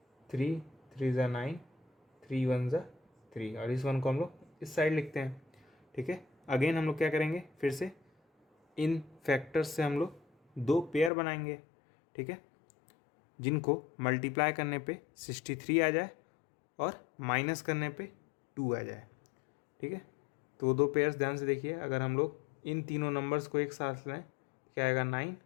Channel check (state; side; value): drops out; right; at 11.1 s